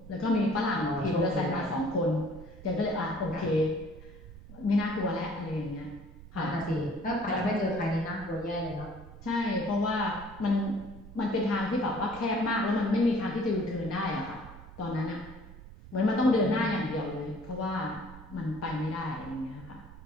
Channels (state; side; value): noise; right; rumble, 16 dB below the sound